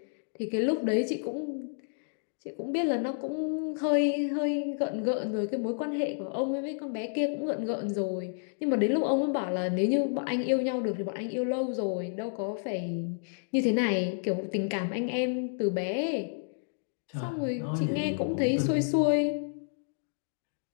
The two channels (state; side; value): silent; right; digital silence